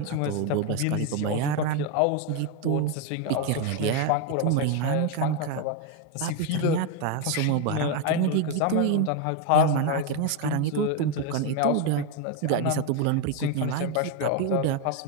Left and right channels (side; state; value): both; different; correlation 0.02